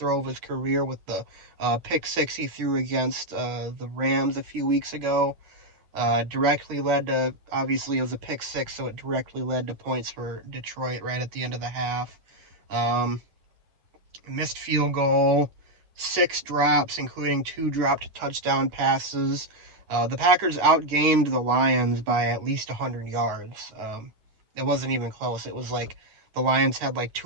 of his career with the pick six he threw against the Rams a few weeks ago. Directly led to, obviously, it was a pick six, so it directly led to points for Detroit right at the end of the half. Um, Missed field goal, six drops, including two dropped touchdown passes. The Packers outgained the Lions by at least 100 yards. It wasn't even close. It was like the Lions had like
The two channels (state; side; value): late; left; 9.6 ms